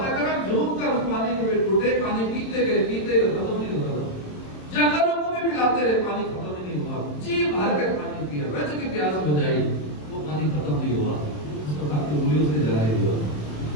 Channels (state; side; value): late; right; 27 ms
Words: کرام جھوم کر اس پانی کے ٹوٹے، پانی پیتے گئے ختم نہیں ہوتا، جنگلوں کو بھی پلاتے رہے، پانی ختم نہیں ہوا، جی بھر کر پانی پیا، رج کی پیاس بجائی، وہ پانی ختم نہیں ہوا، اس کو آپ کی انگلیوں سے جاری ہوا۔